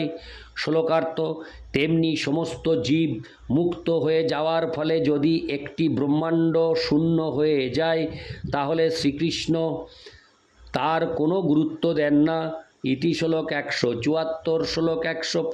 শ্লোকার্থ: তেমনি সমস্ত জীব মুক্ত হয়ে যাওয়ার ফলে যদি একটি ব্রহ্মাণ্ড শূন্য হয়ে যায় তাহলে শ্রীকৃষ্ণ তার কোনো গুরুত্ব দেন না। ইতি শ্লোক 174। শ্লোক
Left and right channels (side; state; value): both; identical; correlation 1.00